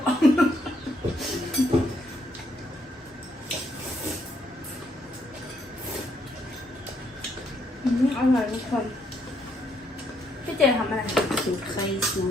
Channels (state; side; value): normal; both; correlation 0.73